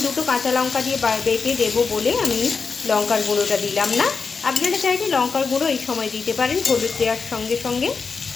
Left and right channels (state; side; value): quieter; right; 5.1 dB